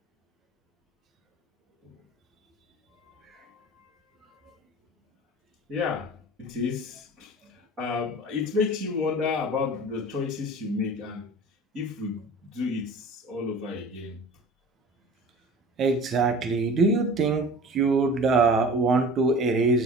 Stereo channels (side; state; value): both; normal; correlation 0.40